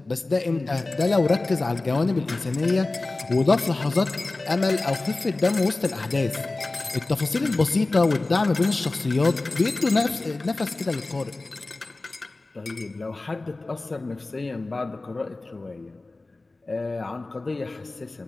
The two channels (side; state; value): right; quieter; 3.2 dB